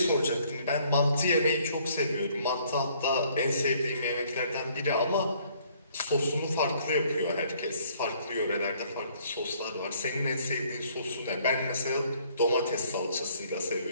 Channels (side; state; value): both; inverted; correlation -0.62